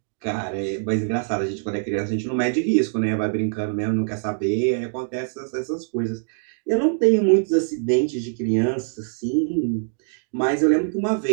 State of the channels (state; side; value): silent; left; 63 dB below the other